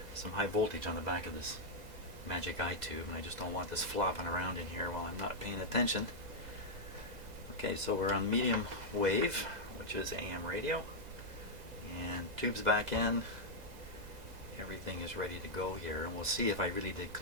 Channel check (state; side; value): late; left; 2.0 ms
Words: Some high voltage on the back of this magic eye tube, and I just don't want this flopping around in here while I'm not paying attention. Okay, so we're on medium wave, which is AM radio, and tube's back in. Everything is ready to go here, and we'll see if I really did